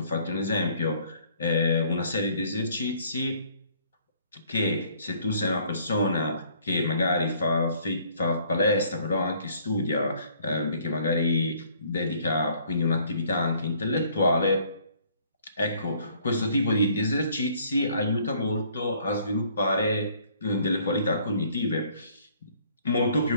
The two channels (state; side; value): inverted; both; correlation -0.60